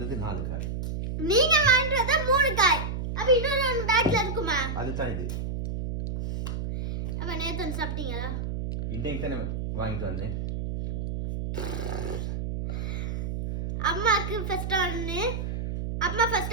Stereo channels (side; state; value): right; noise; hum, 4 dB below the sound